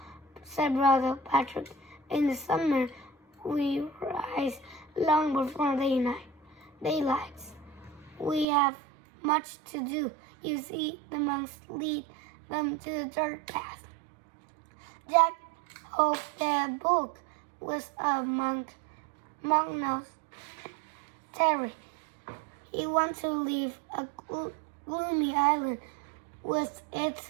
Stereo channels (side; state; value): left; drops out; at 8.5 s